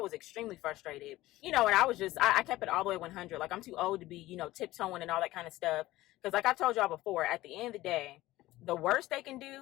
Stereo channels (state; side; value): quieter; right; 17.1 dB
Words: extremely frustrated, and I was just, I kept it all the way 100. Like I'm too old to be, tiptoeing and all that kind of stuff. Because like I told y'all before, at the end of the day, the worst they can